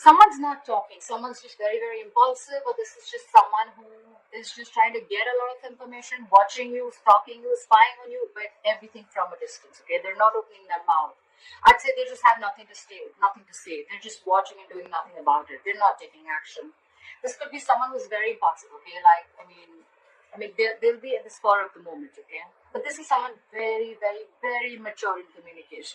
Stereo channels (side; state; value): both; identical; correlation 1.00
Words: not talking. Someone's just very, very impulsive, or this is just someone who is just trying to get a lot of information, watching you, stalking you, spying on you, but everything from a distance, okay? They're not opening their mouth. I'd say they just have nothing to say. They're just watching and doing nothing about it. They're not taking action. This could be someone who's very impulsive, okay? Like, I mean, they'll be at the spur of the moment, okay? But this is someone very, very, very mature in